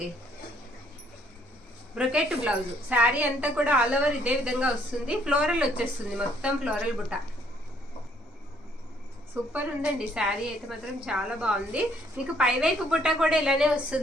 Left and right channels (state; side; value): normal; both; correlation 0.66